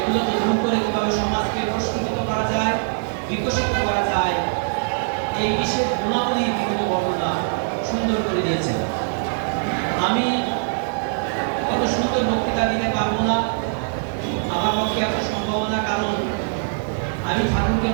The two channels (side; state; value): left; silent; 58 dB below the other